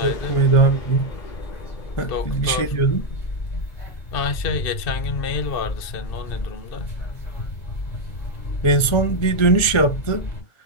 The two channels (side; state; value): right; late; 1.4 ms